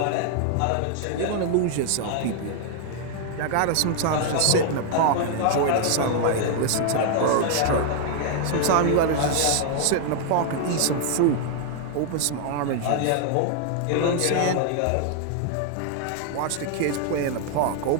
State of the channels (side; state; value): both; different; correlation 0.00